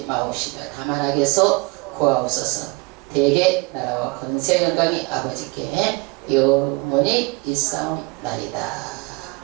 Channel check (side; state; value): left; quieter; 27.0 dB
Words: 마옵시며 다만 악에서 구하옵소서. 대개 나라와 권세 영광이 아버지께 영원히 있사옵나이다.